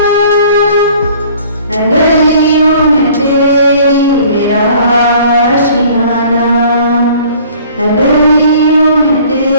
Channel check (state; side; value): inverted; both; correlation -0.52